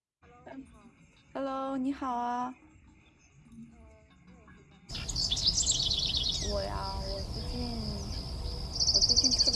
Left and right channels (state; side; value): identical; both; correlation 1.00